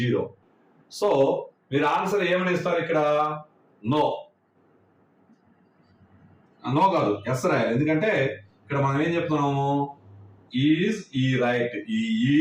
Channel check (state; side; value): identical; both; correlation 1.00